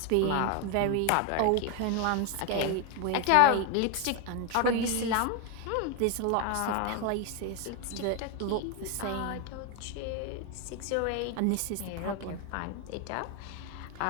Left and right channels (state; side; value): different; both; correlation 0.01